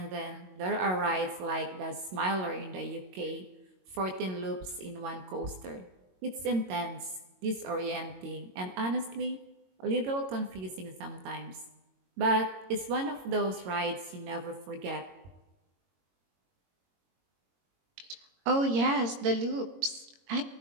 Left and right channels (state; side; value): late; left; 22 ms